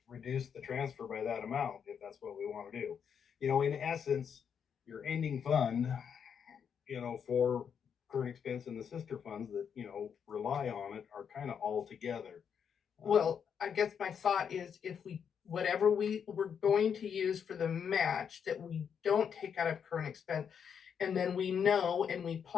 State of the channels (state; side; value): quieter; right; 7.4 dB